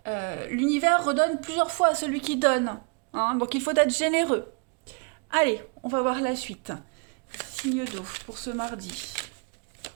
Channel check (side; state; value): left; quieter; 34.2 dB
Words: L'univers redonne plusieurs fois à celui qui donne, hein, donc il faut être généreux. Allez, on va voir la suite. Signe d'eau pour ce mardi.